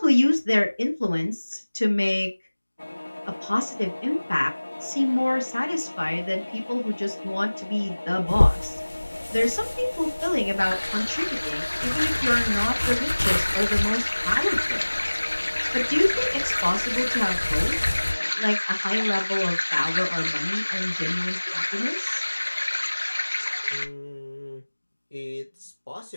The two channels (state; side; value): inverted; both; correlation -1.00